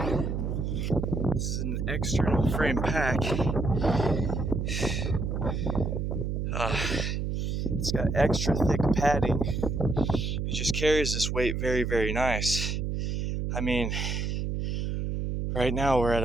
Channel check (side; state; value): right; noise; hum, 1 dB below the sound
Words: this is an external frame pack. It's got extra thick padding. It just carries this weight very, very nice. I mean, right now we're at